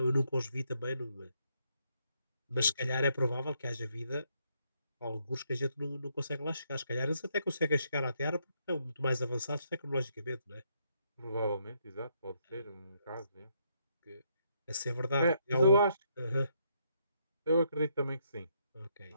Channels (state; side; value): inverted; both; correlation -0.75